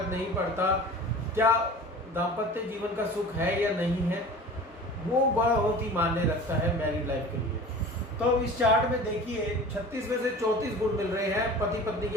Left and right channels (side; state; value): both; normal; correlation 0.39